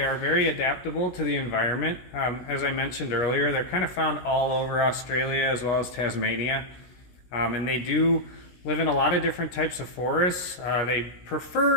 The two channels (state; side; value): late; right; 17 ms